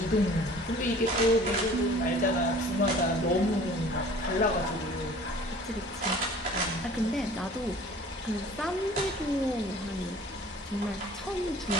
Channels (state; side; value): normal; both; correlation 0.48